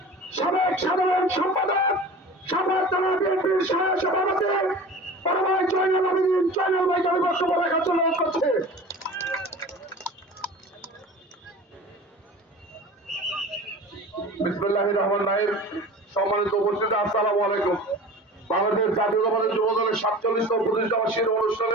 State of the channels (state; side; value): normal; both; correlation 0.38